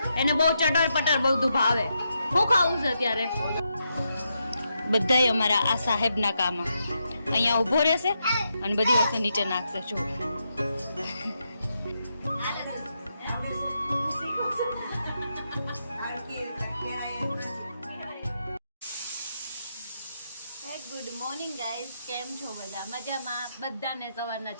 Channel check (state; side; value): inverted; both; correlation -0.83